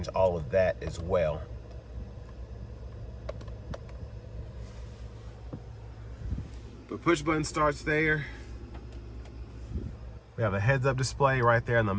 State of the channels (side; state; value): both; identical; correlation 1.00